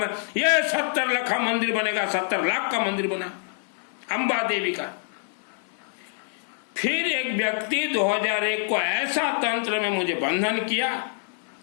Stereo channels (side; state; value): right; silent; 61 dB below the other